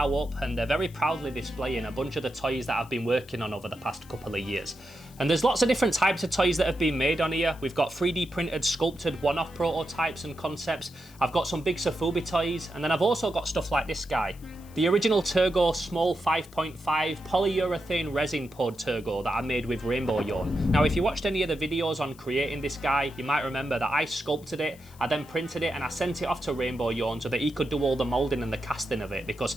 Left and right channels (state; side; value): noise; left; hiss, 24 dB below the sound